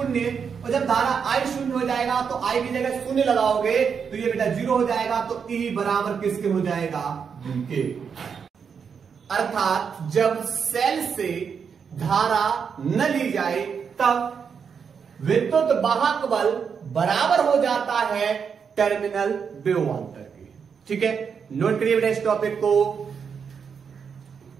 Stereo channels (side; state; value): left; quieter; 6.5 dB